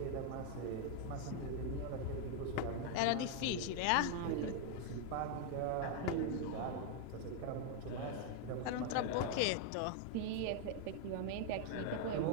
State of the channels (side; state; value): both; different; correlation 0.00